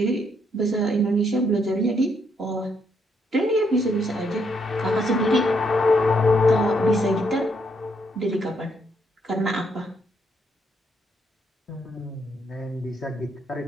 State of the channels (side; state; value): both; normal; correlation 0.74